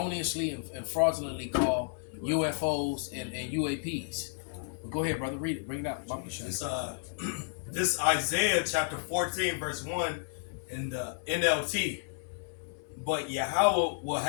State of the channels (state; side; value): silent; right; digital silence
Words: and fraudulently call UFOs and UAPs. But go ahead, brother, read it. Bring it out. Bob shot. This Isaiah chapter 14 verse 1 in the NLT. But Yahweh will